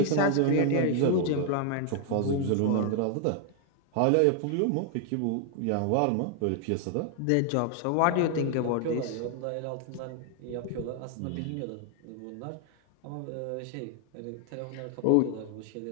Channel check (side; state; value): both; different; correlation 0.00